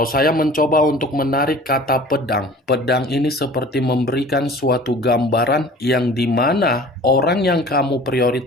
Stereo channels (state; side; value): normal; both; correlation 0.44